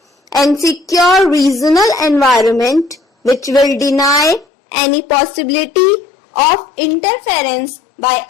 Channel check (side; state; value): right; drops out; at 4.5 s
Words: and secure regional environment which will deny any possibility of interference by